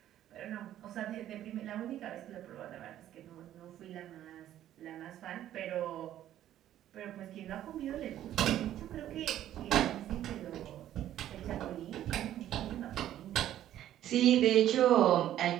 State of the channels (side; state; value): left; quieter; 12.1 dB